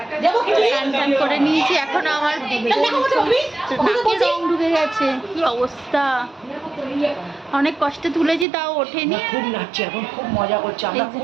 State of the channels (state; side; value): drops out; left; at 8.5 s